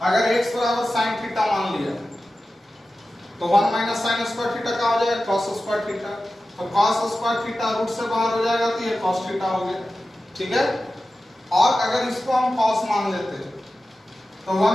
अगर x बराबर साइन थीटा मान लिया तो 1 माइनस साइन स्क्वायर थीटा का हो जाएगा कॉस स्क्वायर थीटा, तो कॉस स्क्वायर थीटा रूट से बाहर हो जाएगा तो ये कॉस थीटा हो गया, ठीक है। और अगर इसको हम कॉस मान लेते तो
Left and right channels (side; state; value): both; normal; correlation 0.94